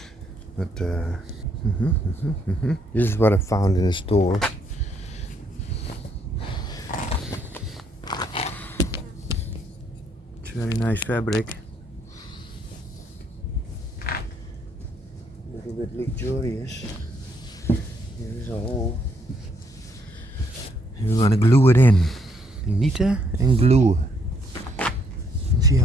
But this is what I found in the store. It's very nice fabric. A little bit luxurious. Here is a hole. And we're gonna glue it in. Knitten and glue. See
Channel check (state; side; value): normal; both; correlation 0.71